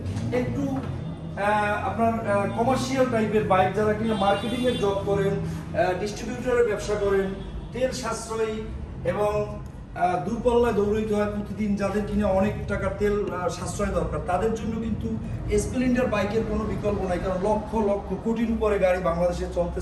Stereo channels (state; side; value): identical; both; correlation 1.00